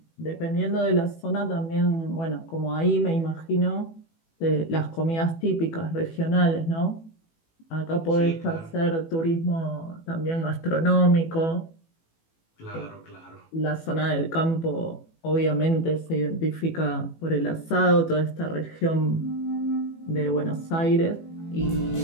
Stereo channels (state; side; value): late; right; 18 ms